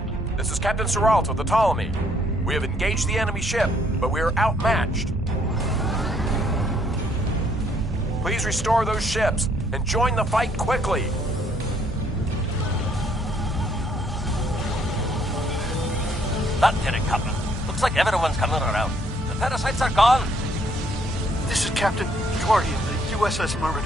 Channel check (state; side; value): normal; both; correlation 0.67